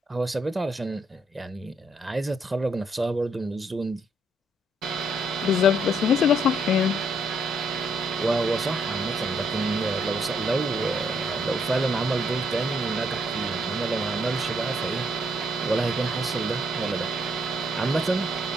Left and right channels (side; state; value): both; normal; correlation 0.70